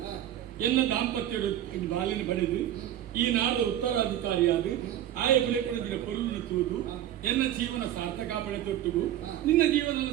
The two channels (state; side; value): quieter; left; 11.9 dB